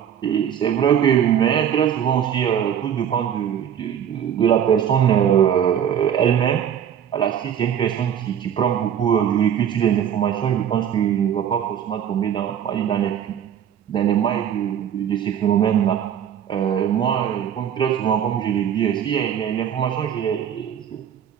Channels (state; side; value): quieter; left; 9.1 dB